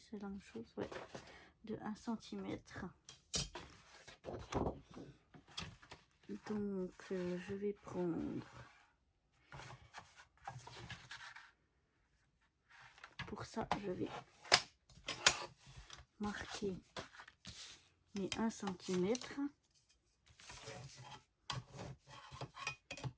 la même chose, ouais. De 1 cm. Donc je vais prendre, pour ça je vais marquer mes 1 cm.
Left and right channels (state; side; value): identical; both; correlation 1.00